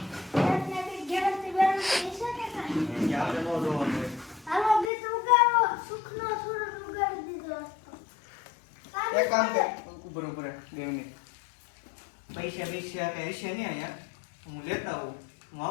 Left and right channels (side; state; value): right; drops out; at 4.9 s